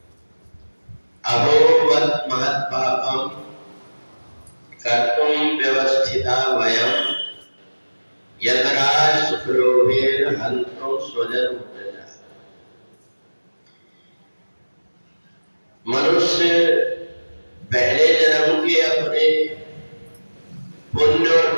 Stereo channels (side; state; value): both; inverted; correlation -1.00